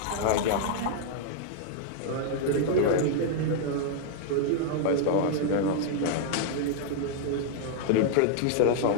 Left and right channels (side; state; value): both; different; correlation -0.01